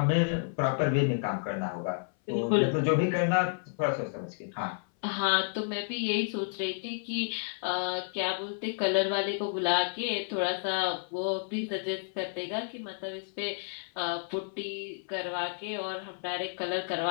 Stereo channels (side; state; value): right; silent; 57 dB below the other